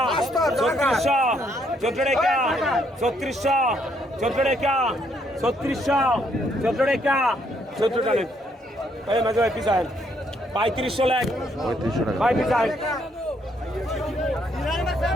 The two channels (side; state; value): both; normal; correlation 0.71